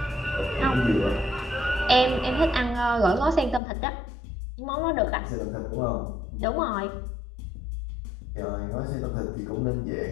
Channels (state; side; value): drops out; right; at 3.6 s